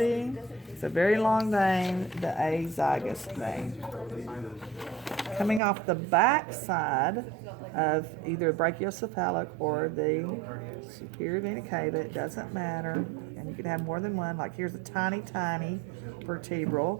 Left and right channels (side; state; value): left; drops out; at 5.6 s